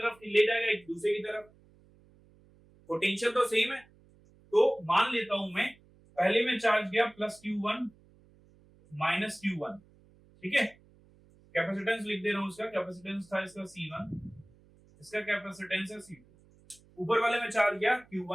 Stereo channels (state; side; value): noise; right; hum, 28 dB below the sound